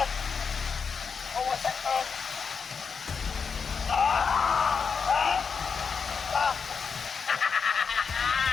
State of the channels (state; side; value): quieter; right; 5.8 dB